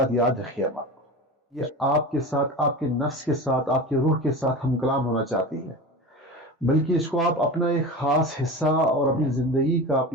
یاد رکھیے آپ، یہ آپ کے ساتھ، آپ کے نفس کے ساتھ، آپ کے روح کے ساتھ ہم کلام ہونا چاہتی ہے، بلکہ اس کو آپ اپنا ایک خاص حصہ اور اپنی زندگی کا،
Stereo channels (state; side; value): normal; both; correlation 0.30